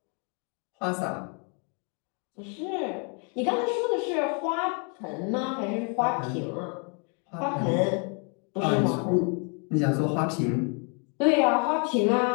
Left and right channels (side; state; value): right; quieter; 37.6 dB